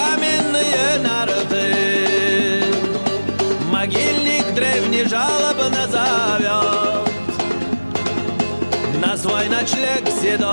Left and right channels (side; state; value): both; inverted; correlation -1.00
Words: нарты. Могильник древний жалобно зовет на свой ночлег